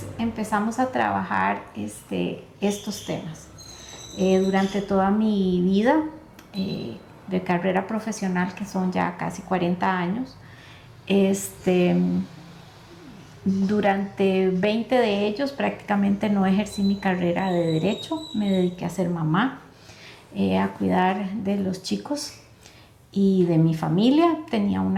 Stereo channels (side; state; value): both; identical; correlation 1.00